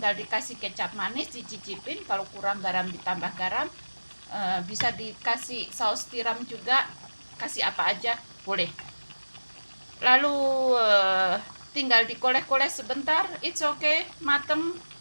dikasih kecap manis, dicicipin, kalau kurang garam ditambah garam, bisa dikasih saus tiram juga, kasih apa aja boleh. Lalu tinggal dikoleh-koleh sebentar, it's okay, mateng,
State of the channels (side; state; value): both; inverted; correlation -1.00